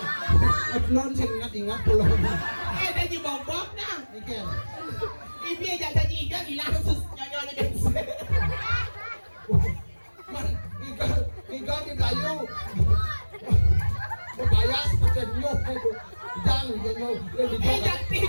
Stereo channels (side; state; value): both; inverted; correlation -1.00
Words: Non sih ingat pulang. Dah dibobok nah. Ikan. Ibu aja tadi ikan hilang sus nyonya bensin. Man, ikan di kayu. Bayar seperti nyok itu. Jangan nyok. Jangan